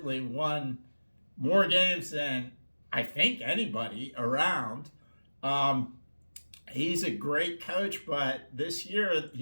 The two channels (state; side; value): inverted; both; correlation -1.00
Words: won more games than I think anybody around. He's a great coach, but this year